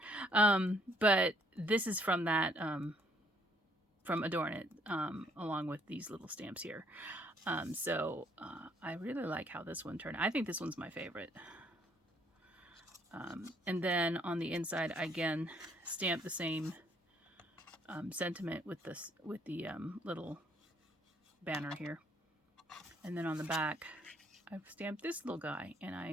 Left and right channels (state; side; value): normal; both; correlation 0.65